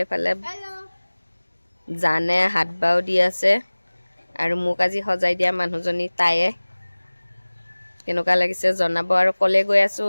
এফালে জানে হাত বাও দি আছে আৰু মোক আজি সজাই দিয়া মানুহজনী তায়ে কেনেকুৱা লাগিছে জনাব আৰু কলে কৈ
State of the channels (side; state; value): both; inverted; correlation -1.00